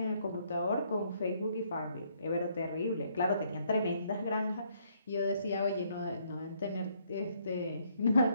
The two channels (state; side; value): inverted; both; correlation -0.69